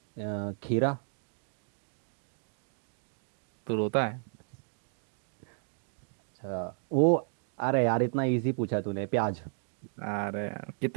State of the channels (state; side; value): silent; left; digital silence